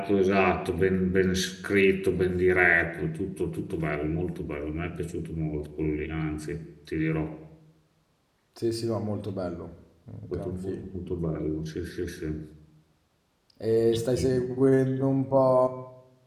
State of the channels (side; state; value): both; identical; correlation 1.00